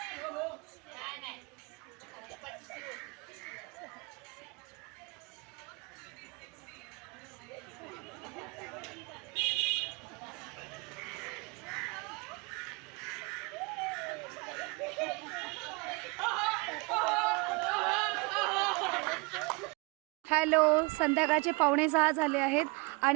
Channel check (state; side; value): quieter; left; 28.6 dB